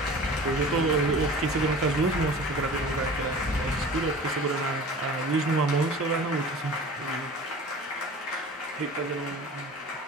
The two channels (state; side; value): normal; both; correlation 0.40